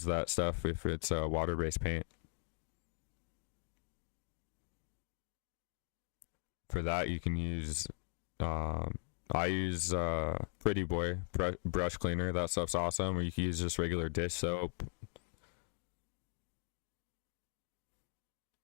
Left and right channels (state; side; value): silent; right; 51 dB below the other